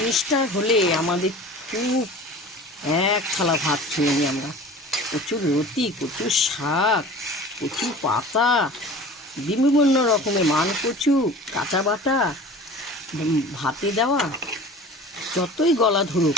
হলে আমাদের খুব এক থালা ভাত খেয়ে নিই আমরা। কচুর লতি, কচুর শাক, কচু পাতা, বিভিন্ন রকমের মান কচু, কাঁচা বাটা, ভাতে দেওয়া, যতই গলা ধরুক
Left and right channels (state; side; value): normal; both; correlation 0.40